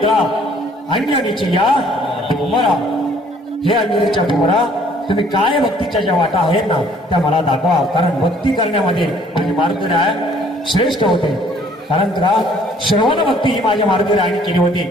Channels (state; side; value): normal; both; correlation 0.59